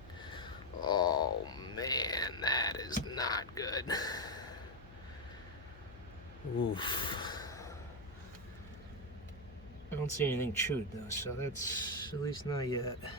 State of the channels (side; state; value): left; noise; hum, 19 dB below the sound